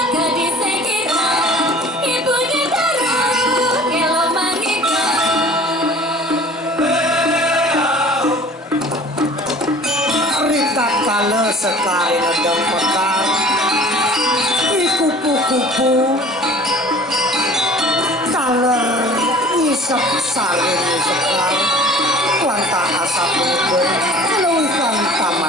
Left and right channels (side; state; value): both; normal; correlation 0.47